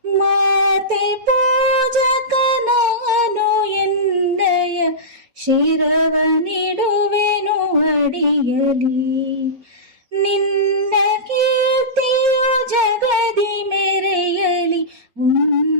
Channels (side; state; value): left; late; 3.9 ms